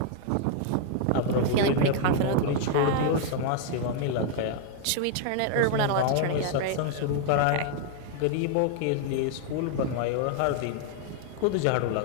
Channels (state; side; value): different; both; correlation 0.00